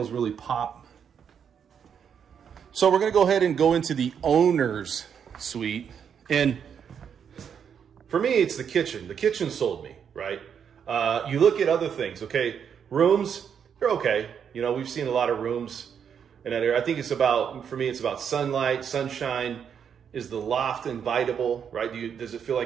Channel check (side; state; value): left; quieter; 7.6 dB